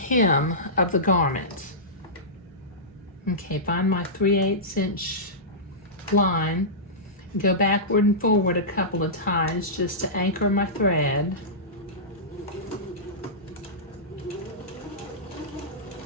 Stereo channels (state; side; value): normal; both; correlation -0.17